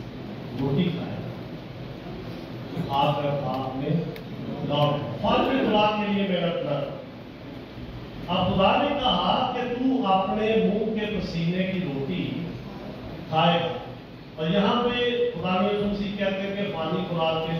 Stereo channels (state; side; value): identical; both; correlation 1.00